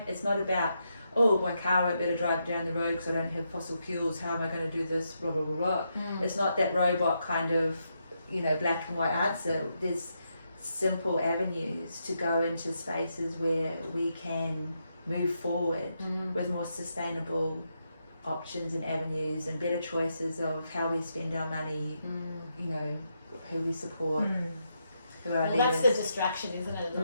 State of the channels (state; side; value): inverted; both; correlation -0.82